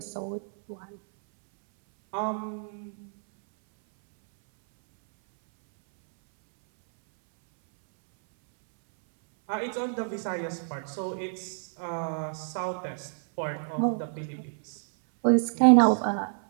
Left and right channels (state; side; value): silent; left; 59 dB below the other